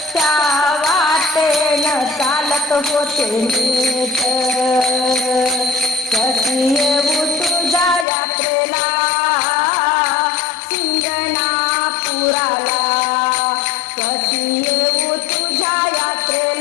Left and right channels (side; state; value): right; drops out; at 8.1 s